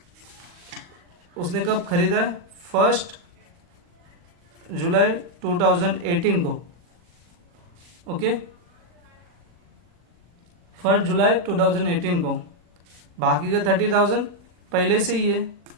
उसने कब खरीदा है? 1 जुलाई 2018 को। ओके, 1 जुलाई 2018 को। बाकी का 30,000 पहले से ही है।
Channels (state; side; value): late; left; 40 ms